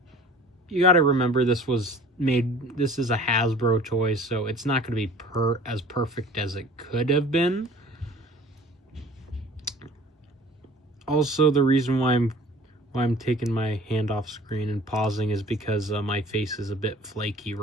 you got to remember, this is a Hasbro toy, so it's not going to be as perfect as it could have been. Also, the reason why I'm taking my hand off screen and pausing is because my face is a bit flaky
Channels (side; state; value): both; normal; correlation 0.47